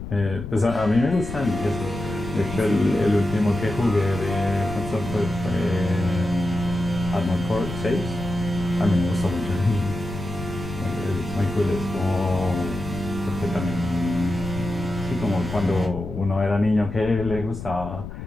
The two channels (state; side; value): noise; left; rumble, 9 dB below the sound